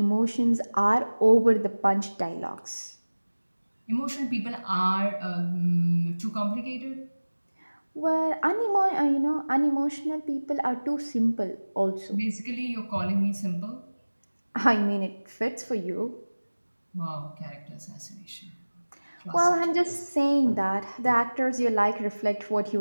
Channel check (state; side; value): inverted; both; correlation -1.00